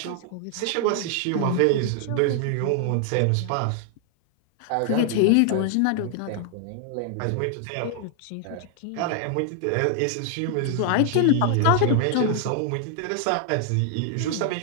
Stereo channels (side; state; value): both; different; correlation 0.00